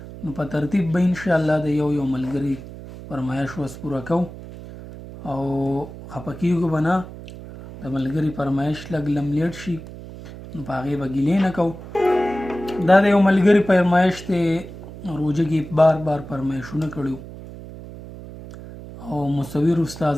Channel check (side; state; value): right; noise; hum, 14 dB below the sound